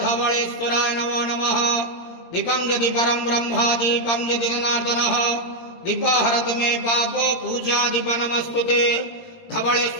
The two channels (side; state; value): right; late; 17 ms